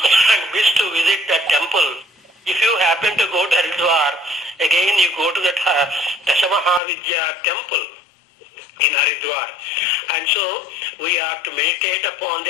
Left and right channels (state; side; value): drops out; right; at 6.8 s